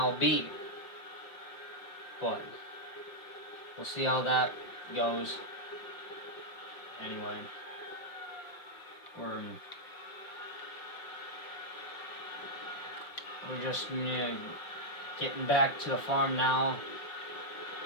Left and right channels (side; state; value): right; late; 5.5 ms